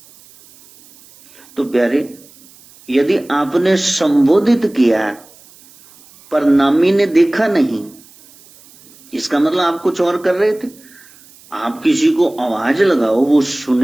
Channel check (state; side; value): noise; right; hiss, 26 dB below the sound